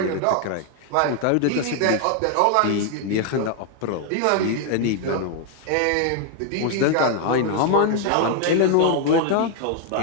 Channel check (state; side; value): different; both; correlation 0.00